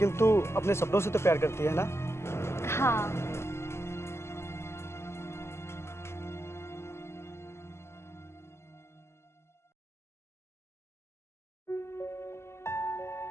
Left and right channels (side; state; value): right; late; 0.13 ms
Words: तू अपने सपनों से तो प्यार करती है ना? हाँ।